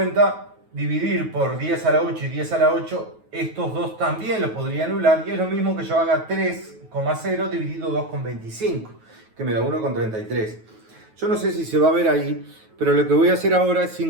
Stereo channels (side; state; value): left; late; 9.3 ms